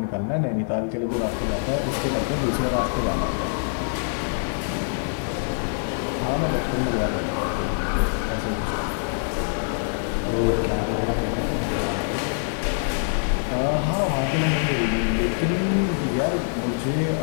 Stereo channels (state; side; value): silent; right; digital silence